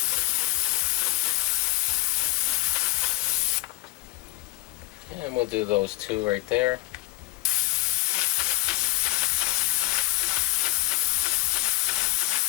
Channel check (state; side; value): quieter; right; 19.5 dB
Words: And we'll do those two right there.